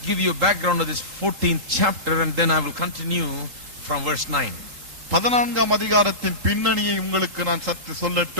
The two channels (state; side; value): late; left; 3.8 ms